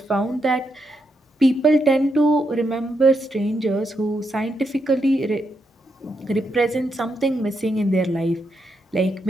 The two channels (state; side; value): normal; both; correlation 0.81